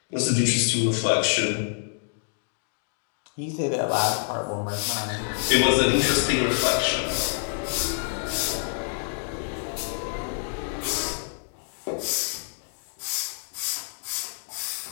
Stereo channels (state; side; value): silent; right; digital silence